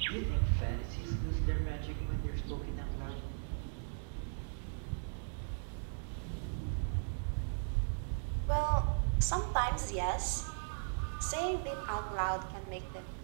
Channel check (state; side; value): silent; left; digital silence